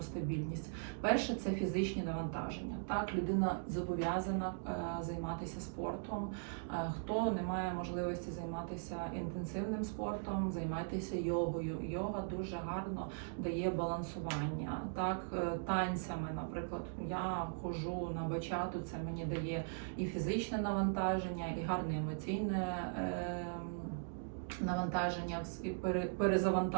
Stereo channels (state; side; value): silent; left; digital silence